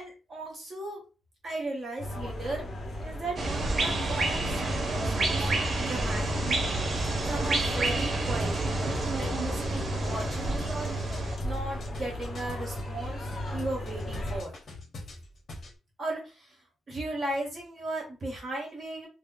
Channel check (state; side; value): normal; both; correlation 0.83